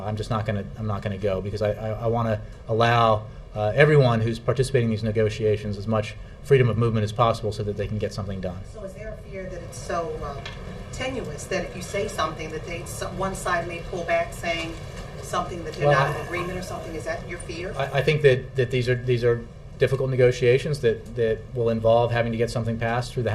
not going to go, because I want to allow everyone who's participating in these negotiations as much freedom of movement as possible so that they can get something done. So is there a fear that it's so tenuous that if you say something that one side may pull back saying something that they're not in agreement or something? Is that your fear? I think that these are difficult negotiations that will involve having to get something passed through the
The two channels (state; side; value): identical; both; correlation 1.00